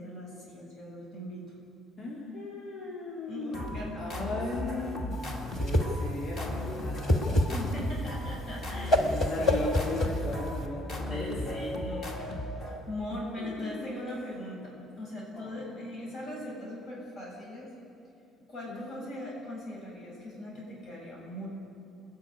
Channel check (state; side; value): normal; both; correlation 0.65